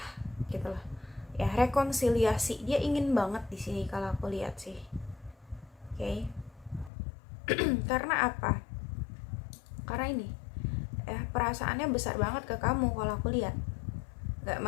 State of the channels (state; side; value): drops out; right; at 6.9 s